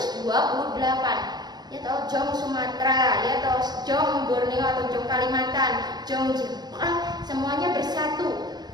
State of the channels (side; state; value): left; late; 0.20 ms